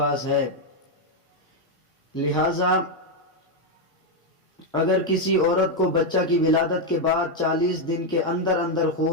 ہے۔ لہذا اگر کسی عورت کو بچہ کی ولادت کے بعد 40 دن کے اندر اندر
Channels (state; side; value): normal; both; correlation 0.03